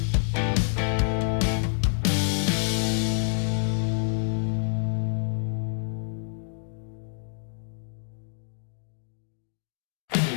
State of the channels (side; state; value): right; silent; digital silence